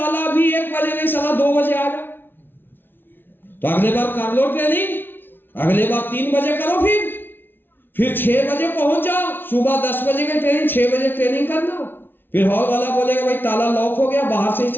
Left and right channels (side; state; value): right; late; 0.10 ms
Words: भी 1 बजे नहीं, साला 2 बजे आ गया, तो अगले बार कर लो ट्रेनिंग, अगले बार 3 बजे करो, फिर 6 बजे पहुंच जाओ। सुबह 10 बजे की ट्रेनिंग, 6 बजे ट्रेनिंग करना। फिर हॉल वाला बोलेगा भाई ताला लॉक हो गया, बाहर से ही